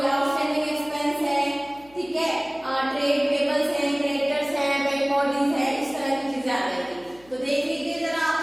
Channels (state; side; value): noise; left; hum, 27 dB below the sound